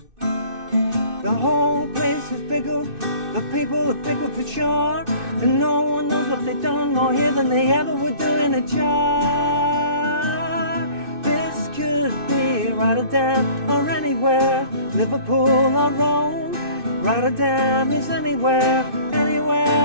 The whole place is pickled, the people are pickled for sure, and no one knows what they've done more here than they ever would do in a jar. This could be Rotterdam or anywhere, Liverpool or Rome. Rotterdam is anywhere,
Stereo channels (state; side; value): late; left; 2.6 ms